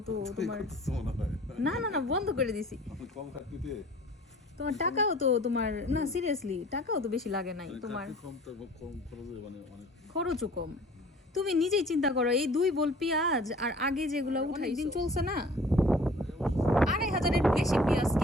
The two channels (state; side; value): normal; both; correlation 0.49